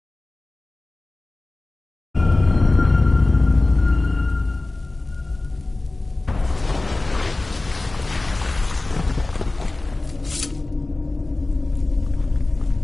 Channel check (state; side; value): quieter; right; 3.0 dB